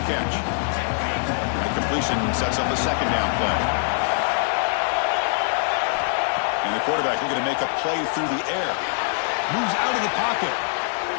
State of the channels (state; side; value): silent; right; digital silence